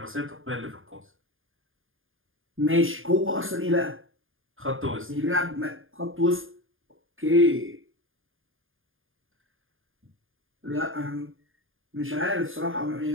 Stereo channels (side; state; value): left; late; 0.59 ms